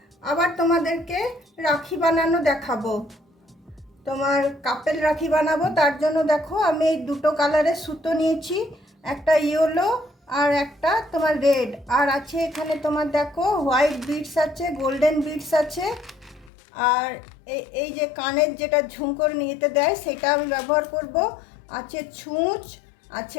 আবার তোমাদেরকে রাখি বানানো দেখাবো। তোমার কাপেল রাখি বানাবো, তার জন্য দেখো আমি এই দুটো কালারের সুতো নিয়েছি, একটা ইয়েলো আর একটা তোমার রেড, আর আছে এখানে তোমার দেখো হোয়াইট বিডস আছে, গোল্ডেন বিডস আছে, আর এই যে কানের যেটা ঝুমকোর নিতে দেয় সেটা আমি ব্যবহার করব। আছে ছুঁচ,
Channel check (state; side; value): drops out; right; at 16.5 s